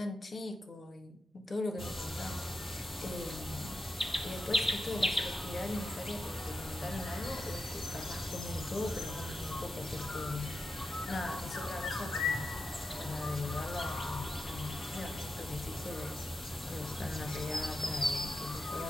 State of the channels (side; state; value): both; normal; correlation 0.88